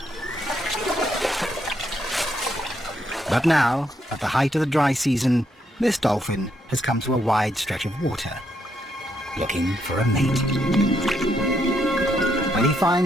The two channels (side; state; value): both; normal; correlation 0.76